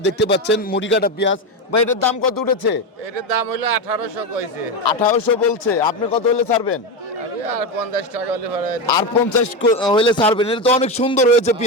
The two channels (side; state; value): both; normal; correlation 0.14